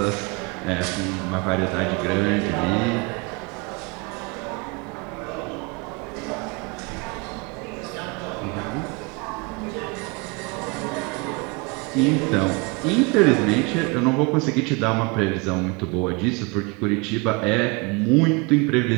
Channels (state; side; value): quieter; left; 28.4 dB